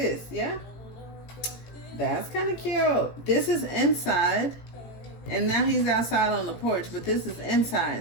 yeah? That's kind of cute. This is inside, and now he's outside on the porch, but this is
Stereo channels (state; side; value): late; right; 18 ms